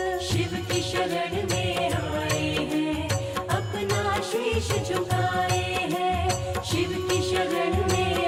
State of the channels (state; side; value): identical; both; correlation 1.00